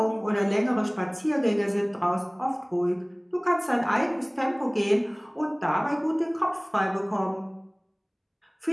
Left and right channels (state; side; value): identical; both; correlation 1.00